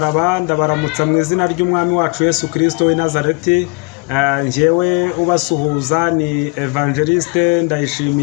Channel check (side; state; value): right; quieter; 29.8 dB